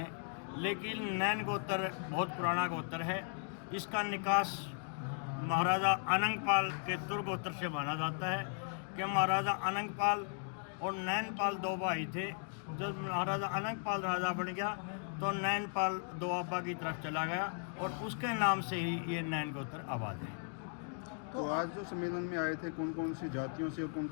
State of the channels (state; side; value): silent; right; 53 dB below the other